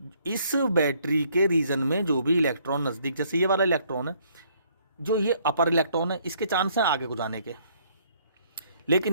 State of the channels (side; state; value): both; inverted; correlation -0.65